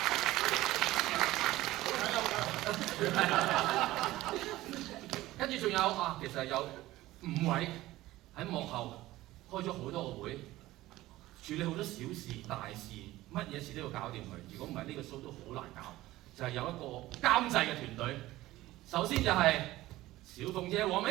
跟住仲有其實有5位喺幕後開咗好多個會，處理好多小事大事，乜嘢事都要搞掂佢。如果唔係呢個 show 都好難搞。就係有一個監製嘅團隊，首先就係小鳳姐黃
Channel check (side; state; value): left; quieter; 16.8 dB